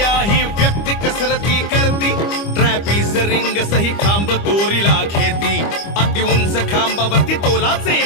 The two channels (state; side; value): late; right; 25 ms